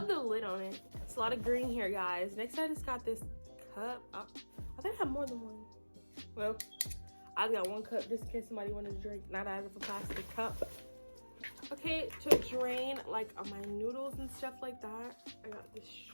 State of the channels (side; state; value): both; inverted; correlation -1.00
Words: the lid on it. It's a lot of green here, guys. Next, I just got this cup. I think I have more than one. Well, I've got one cup just in case somebody wanted to drink, not out of a plastic cup. Okay, to drain like my noodles and stuff like that, I got this